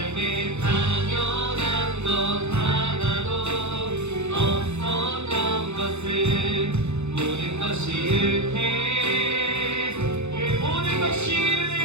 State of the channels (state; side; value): late; left; 0.81 ms